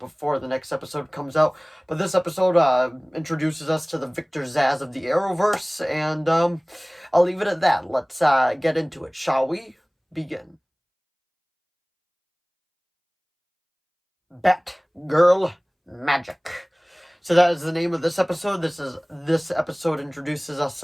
the next episode comes out. But this episode, introduces us to the Victor Zsasz of the Arrowverse, and, I'll leave it at that. Let's, get into it, shall we? Begin. Batgirl Magic. So that is the name of this episode. This episode introduces us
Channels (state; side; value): identical; both; correlation 1.00